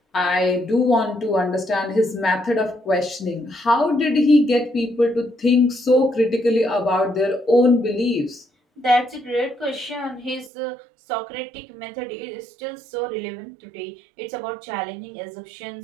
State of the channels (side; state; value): left; drops out; at 10.5 s